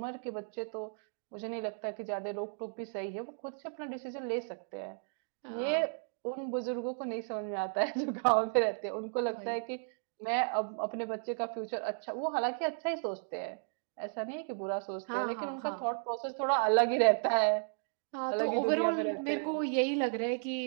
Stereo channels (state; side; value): silent; left; digital silence